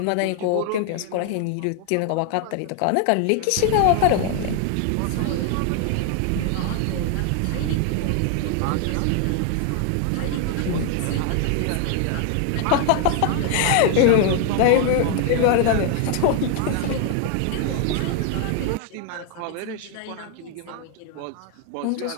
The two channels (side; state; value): both; different; correlation 0.00